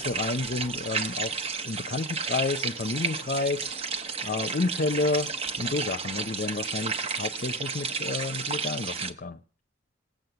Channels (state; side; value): normal; both; correlation 0.20